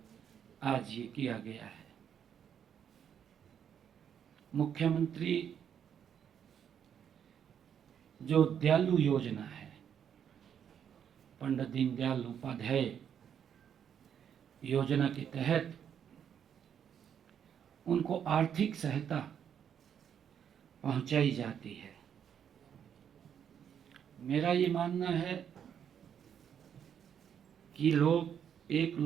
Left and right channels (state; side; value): quieter; left; 8.5 dB